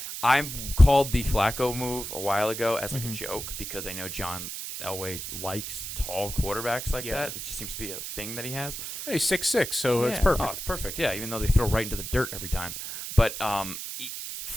I called the Flacco move a while ago as like a joke because I know John Elway likes tall quarterbacks like that. It just seems to be a thing that he has. He's 6'6", so it's perfect. Oh, it's perfect. Yeah, even though they throw right into the dirt every time. But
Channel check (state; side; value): noise; right; hiss, 7 dB below the sound